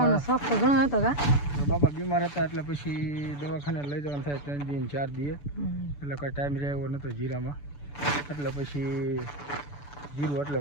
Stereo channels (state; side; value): late; right; 6.9 ms